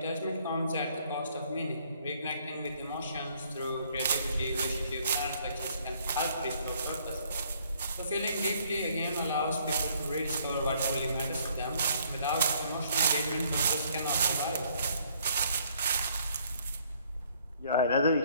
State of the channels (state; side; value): inverted; both; correlation -0.64